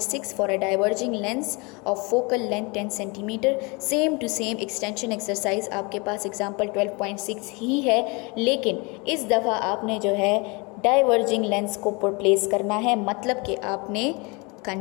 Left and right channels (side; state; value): right; quieter; 28.8 dB